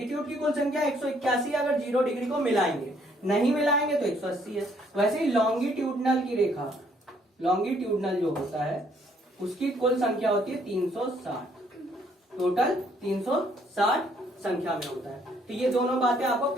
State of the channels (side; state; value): both; normal; correlation 0.66